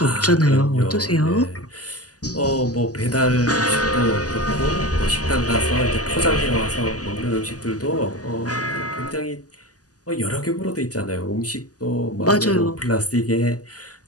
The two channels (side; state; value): right; late; 0.67 ms